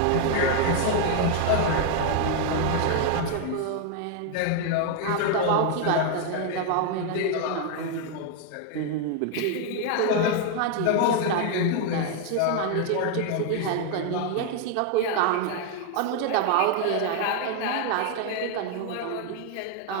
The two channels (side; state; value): both; different; correlation 0.00